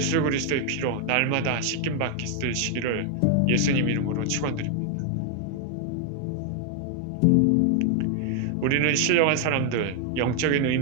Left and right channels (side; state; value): both; different; correlation 0.00